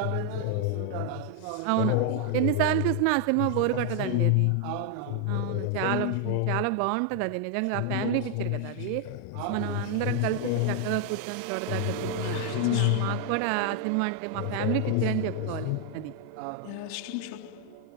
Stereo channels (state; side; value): different; both; correlation 0.00